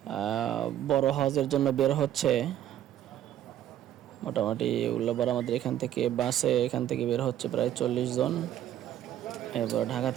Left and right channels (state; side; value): quieter; left; 11.7 dB